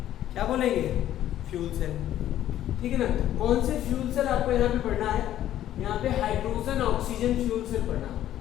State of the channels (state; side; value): quieter; right; 12.3 dB